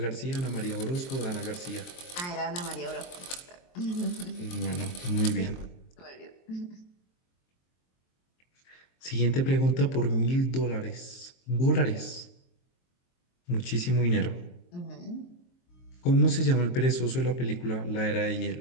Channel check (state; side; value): late; right; 23 ms